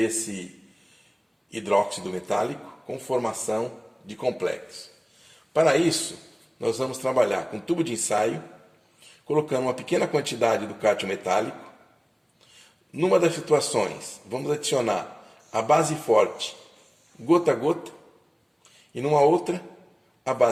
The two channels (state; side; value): identical; both; correlation 1.00